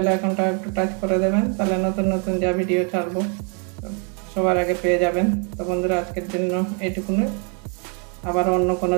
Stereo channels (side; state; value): left; quieter; 37.9 dB